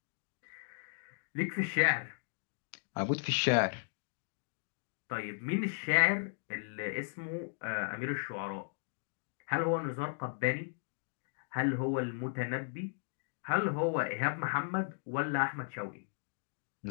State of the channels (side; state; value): right; silent; digital silence